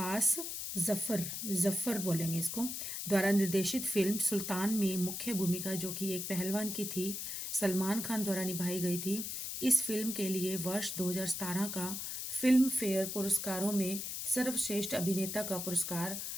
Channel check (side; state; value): left; noise; hiss, 5 dB below the sound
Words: जफर बोलेंगे इसको, द्वारा निर्देशित फिल्म सुल्तान में मुख्य भूमिका जो कि एक पहलवान की थी सलमान खान द्वारा निभाई गई थी। इस फिल्म के लिए वर्ष 2017 का फिल्म फेयर पुरस्कारों में सर्वश्रेष्ठ अभिनेता का पुरस्कार